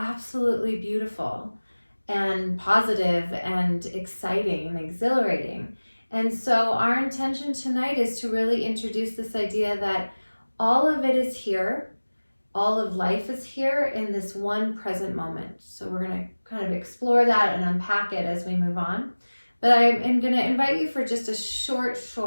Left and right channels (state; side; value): inverted; both; correlation -1.00